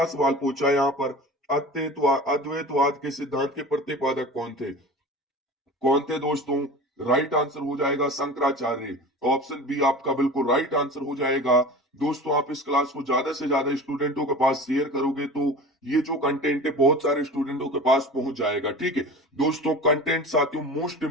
सवाल पूछा है यहाँ पर, अद्वैतवाद के सिद्धांत के प्रतिपादक कौन थे दोस्तों? राइट आंसर हो जाएगा शंकराचार्य। ऑप्शन बी आपका बिल्कुल राइट आंसर हो जाएगा। दोस्तों आप इस क्लास को ज्यादा से ज्यादा स्टूडेंटों के पास शेयर करोगे तो ये जो कंटेंट है बहुत सारे स्टूडेंटों के पास पहुंच जाएगा। ठीक है दोस्तों, कंटेंट साथियों मोस्ट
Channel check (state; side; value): normal; both; correlation 0.36